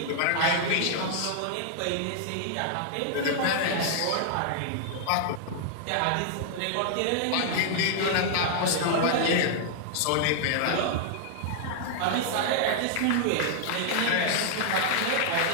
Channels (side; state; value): both; different; correlation -0.01